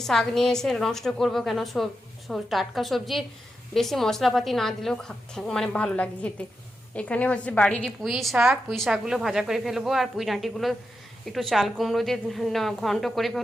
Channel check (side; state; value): both; normal; correlation 0.87